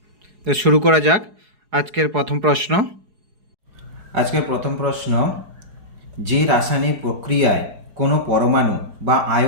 তো শুরু করা যাক। আজকের প্রথম প্রশ্ন, যে রাসায়নিক প্রক্রিয়ায় কোনো পরমাণু বা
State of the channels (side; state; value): left; late; 4.8 ms